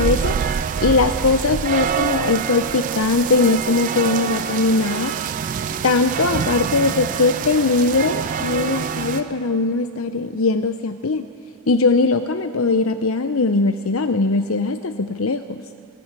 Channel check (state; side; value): normal; both; correlation -0.03